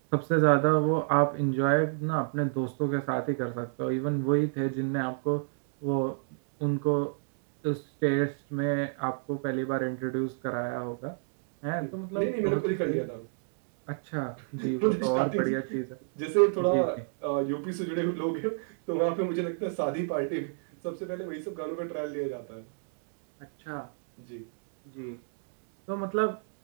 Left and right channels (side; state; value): left; silent; digital silence